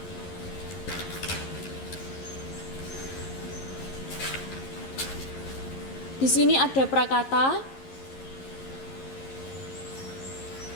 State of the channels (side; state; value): right; late; 11 ms